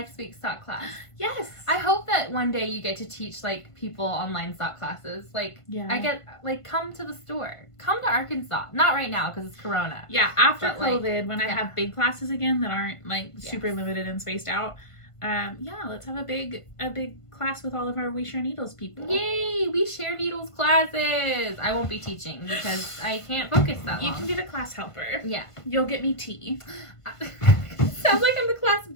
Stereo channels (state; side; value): late; right; 1.5 ms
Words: week's sock class. Yes. I hope that one day you get to teach like people online sock classes. Come to the store. Come to Arkansas. Not right now because it's Corona. Yeah, after COVID, when I have big classes again that aren't like super limited and spaced out. Let's have a big class with all of our We Share Needles people. Yay! We Share Needles classes! I won't be teaching because I can't focus that long. You can be the class helper. Yeah. You'll get me tea. Sounds like I'm the class